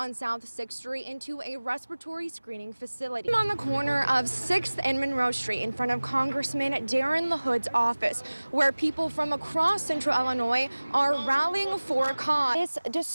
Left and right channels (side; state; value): both; inverted; correlation -1.00